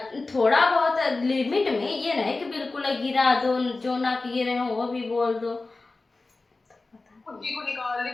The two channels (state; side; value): quieter; right; 3.5 dB